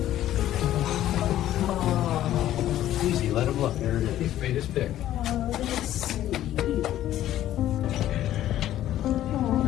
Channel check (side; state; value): right; quieter; 12.8 dB